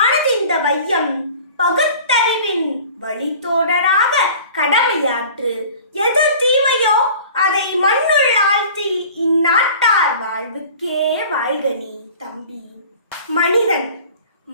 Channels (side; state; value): both; inverted; correlation -0.44